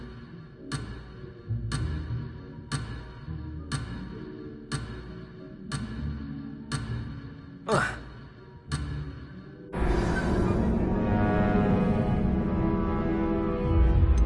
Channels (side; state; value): both; identical; correlation 1.00